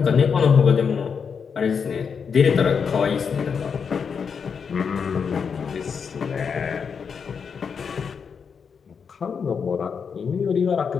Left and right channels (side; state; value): right; quieter; 6.3 dB